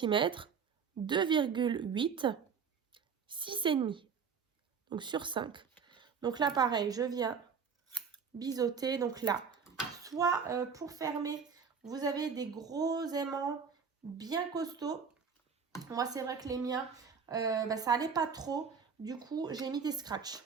2,8, 6,5. Donc, sur 5. Donc là, pareil, je viens biseauter. Donc là, soit pour fermer, vous avez des gros aimants bien costauds. Moi, c'est vrai que les miens, ça allait pas trop. Du coup, j'ai mis des scratchs.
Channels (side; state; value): left; quieter; 6.2 dB